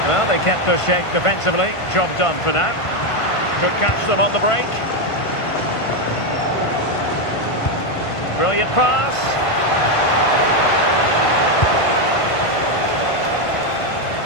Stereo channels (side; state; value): right; late; 1.5 ms